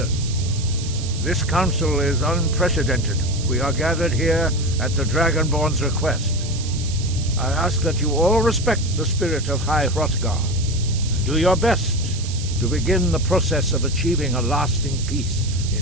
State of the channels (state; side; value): noise; right; hiss, 11 dB below the sound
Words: this council is unprecedented. We are gathered here at the Dragonborn's request. I ask that you all respect the spirit of High Hrothgar, and do your best to begin the process of achieving a lasting peace